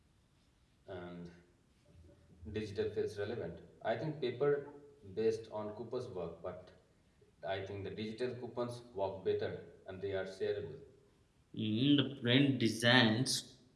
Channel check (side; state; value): both; identical; correlation 1.00